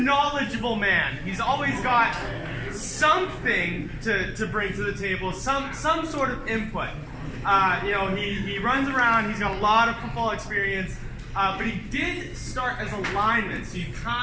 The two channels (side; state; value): both; identical; correlation 1.00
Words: man. He's always got something to bring to the table, some sort of input. He runs around, he's got a lot of football experience, but he did start as a lineman, so you